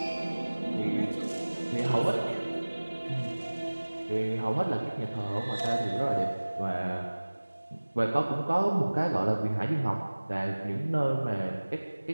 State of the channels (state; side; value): inverted; both; correlation -1.00